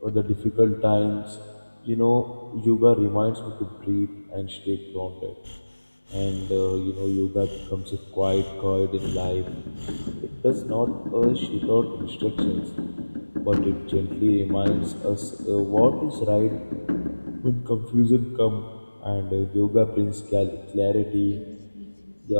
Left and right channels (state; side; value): inverted; both; correlation -1.00